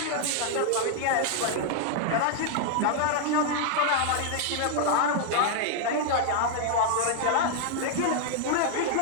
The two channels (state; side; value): different; both; correlation -0.01